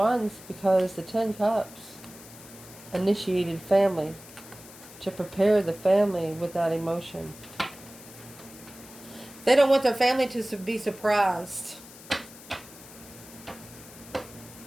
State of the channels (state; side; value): noise; left; hiss, 18 dB below the sound